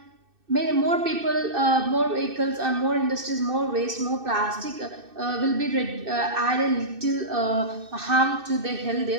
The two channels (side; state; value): left; late; 2.6 ms